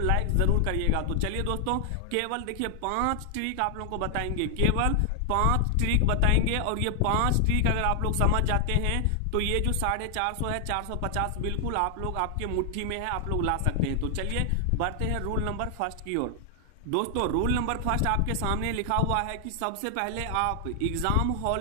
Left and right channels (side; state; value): both; different; correlation 0.00